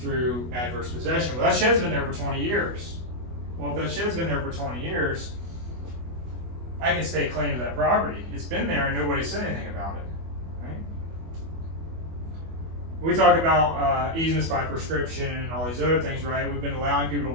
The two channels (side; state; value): left; late; 24 ms